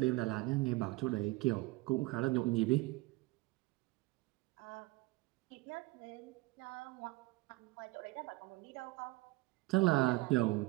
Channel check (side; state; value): left; quieter; 22.0 dB